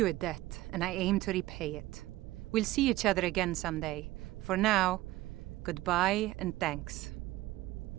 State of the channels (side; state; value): left; quieter; 17.3 dB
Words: a debt, and I aim to repay it. We'll see each other again someday. For now, goodbye and thanks.